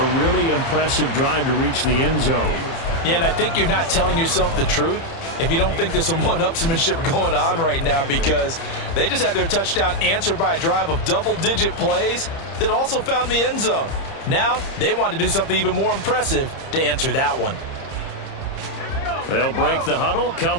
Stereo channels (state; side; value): late; right; 30 ms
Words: really impressive drive to reach the end zone. Yeah, and I think you're not telling yourself the truth if you don't think there's some one-upsmanship going on right now, because they just had their touchdown answered by a drive of double-digit plays that also found the end zone. Now they want to do something even more impressive to answer that one. They'll break the huddle,